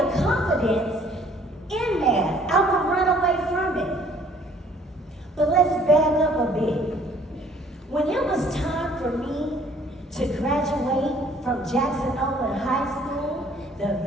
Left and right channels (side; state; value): both; normal; correlation 0.58